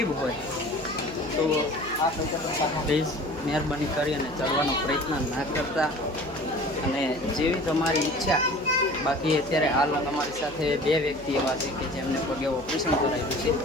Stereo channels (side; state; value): right; noise; hum, 17 dB below the sound